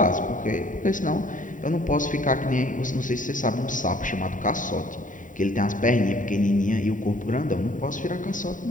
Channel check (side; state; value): right; late; 0.38 ms